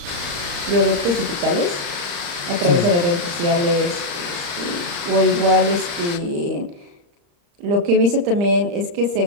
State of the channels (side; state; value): left; late; 34 ms